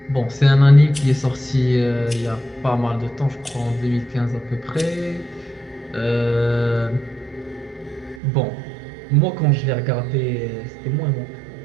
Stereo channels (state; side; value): drops out; left; at 8.2 s